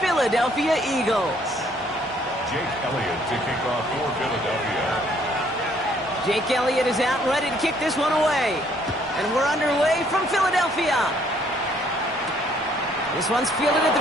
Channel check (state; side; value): normal; both; correlation 0.64